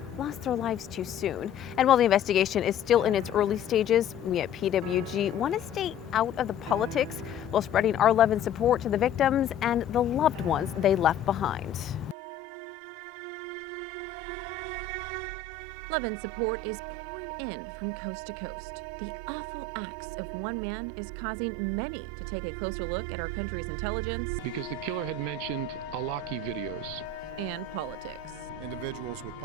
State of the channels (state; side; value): quieter; right; 5.5 dB